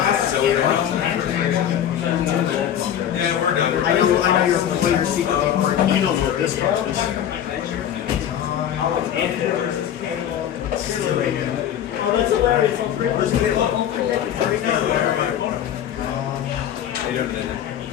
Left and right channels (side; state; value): right; quieter; 10.2 dB